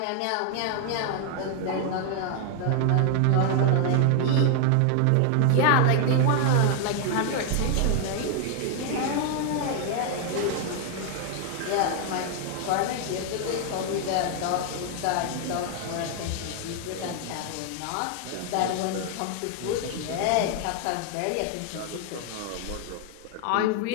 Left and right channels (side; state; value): both; different; correlation 0.00